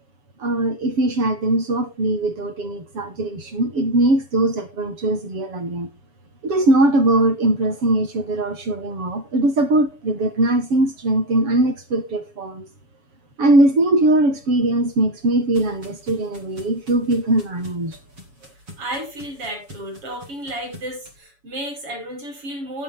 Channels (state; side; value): late; left; 7.1 ms